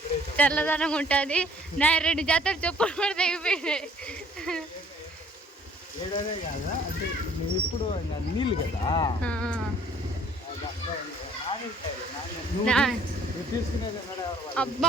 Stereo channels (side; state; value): both; normal; correlation 0.58